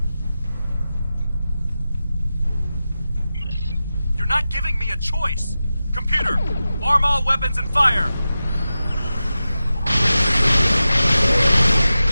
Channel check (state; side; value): inverted; both; correlation -0.93